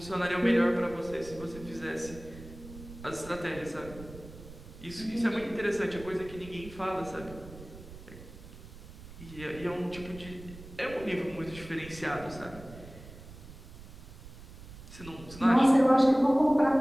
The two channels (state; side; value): noise; right; rumble, 16 dB below the sound